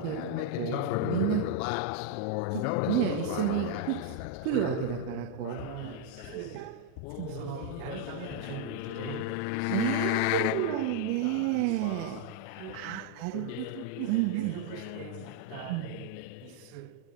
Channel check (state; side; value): different; both; correlation 0.00